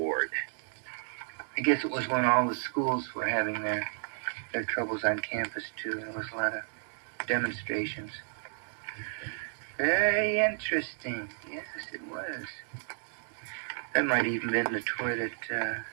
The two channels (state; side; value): silent; left; digital silence